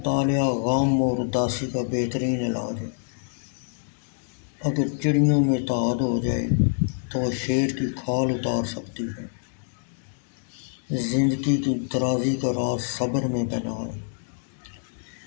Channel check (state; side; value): silent; right; digital silence